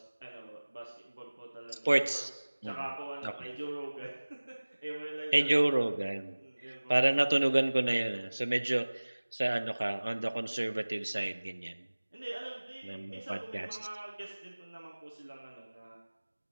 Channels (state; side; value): inverted; both; correlation -1.00